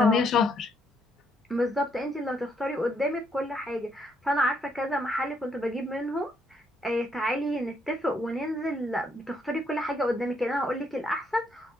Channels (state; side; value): normal; both; correlation 0.73